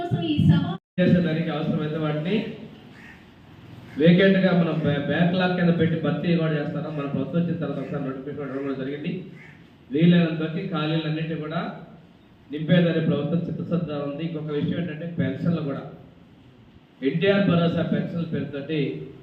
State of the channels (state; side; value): identical; both; correlation 1.00